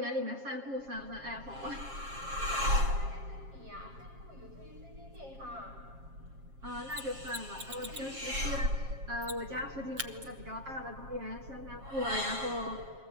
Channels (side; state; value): left; late; 7.4 ms